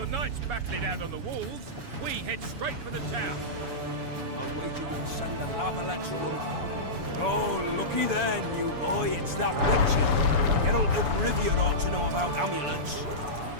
knights battle it out on the walls, we head straight for the town. I'll wager you'll send the lavalets running. Oh, looky there, new boy, it's that Witcher. Geralt of Rivia ought to know about amulets.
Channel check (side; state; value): left; late; 7.0 ms